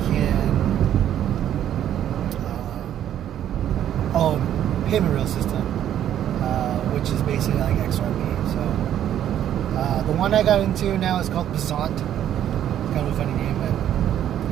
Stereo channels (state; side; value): quieter; left; 10.8 dB